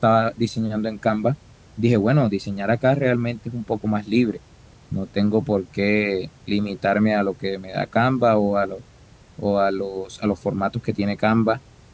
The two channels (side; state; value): both; identical; correlation 1.00